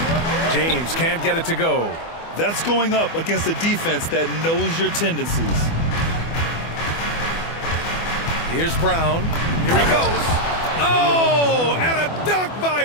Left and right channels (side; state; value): right; late; 24 ms